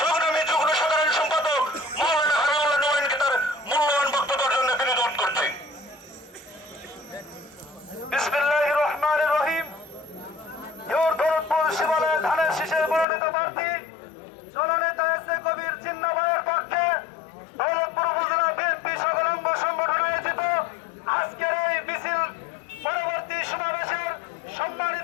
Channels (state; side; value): drops out; right; at 13.1 s